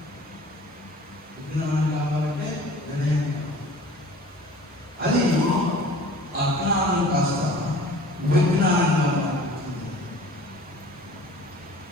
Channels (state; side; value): normal; both; correlation 0.46